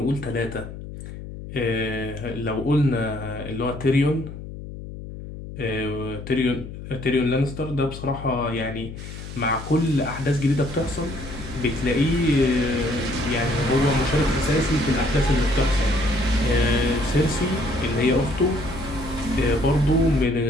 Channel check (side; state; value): left; noise; hum, 11 dB below the sound